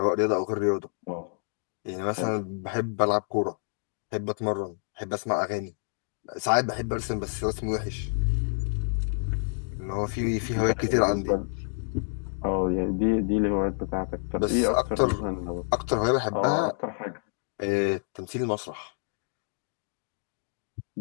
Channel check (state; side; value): silent; right; digital silence